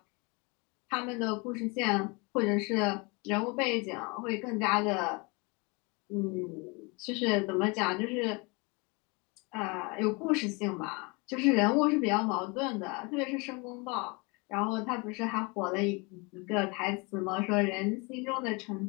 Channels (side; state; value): right; quieter; 29.0 dB